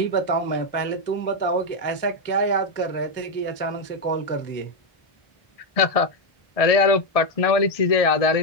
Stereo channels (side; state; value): right; late; 1.6 ms